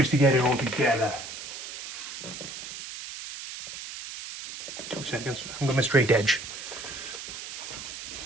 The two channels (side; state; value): right; noise; hiss, 9 dB below the sound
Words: to get it all together. 2 seconds, I'm going to straight edge.